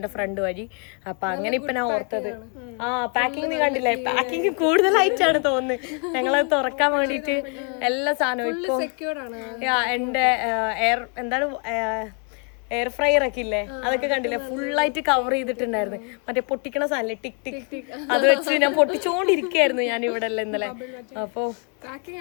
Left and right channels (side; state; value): right; quieter; 36.9 dB